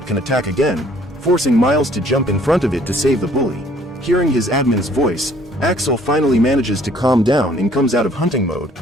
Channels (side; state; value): both; normal; correlation 0.58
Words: can attack again, forcing Miles to jump in front of it to save the bully. Hearing his admin's voice, Axel finally manages to calm down and comes out of hunting mode,